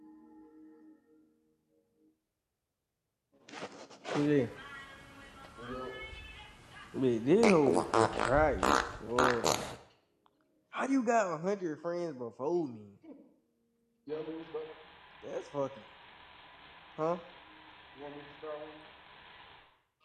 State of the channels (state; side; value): identical; both; correlation 1.00